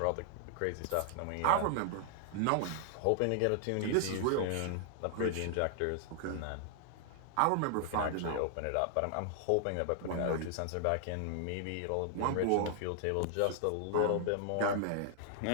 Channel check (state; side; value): different; both; correlation 0.00